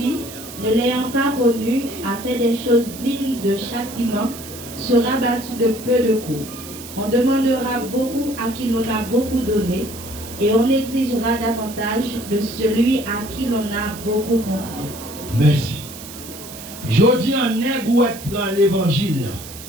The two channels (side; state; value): right; noise; hiss, 14 dB below the sound